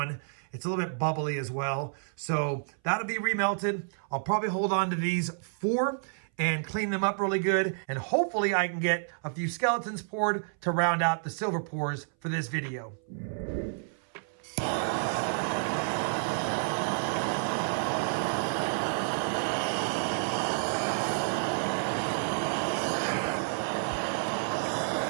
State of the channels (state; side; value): silent; left; 58 dB below the other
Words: It's a little bit bubbly as well. So that'll be remelted. I'll probably hold on to these 4 and clean them up really good. And hopefully I can get a few skeletons poured to round out the silver pours for this video.